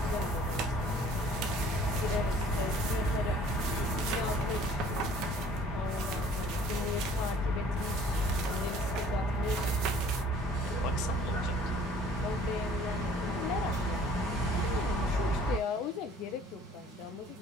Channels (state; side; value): normal; both; correlation 0.53